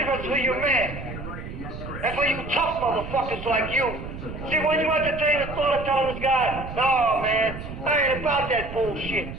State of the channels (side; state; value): right; noise; rumble, 10 dB below the sound